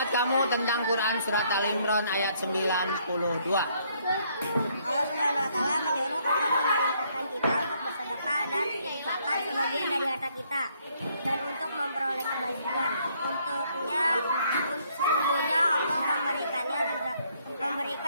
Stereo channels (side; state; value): both; inverted; correlation -0.68